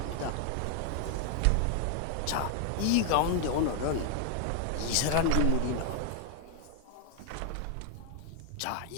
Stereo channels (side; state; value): both; different; correlation 0.00